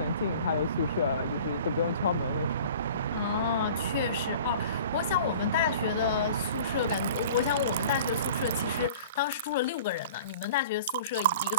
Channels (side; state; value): both; inverted; correlation -0.44